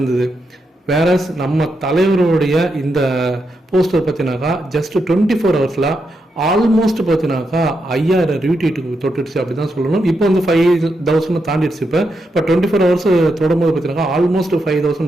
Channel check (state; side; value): normal; both; correlation 0.84